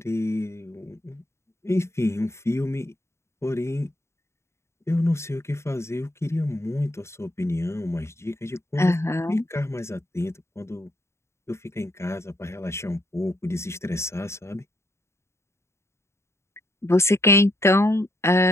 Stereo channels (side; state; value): right; late; 0.13 ms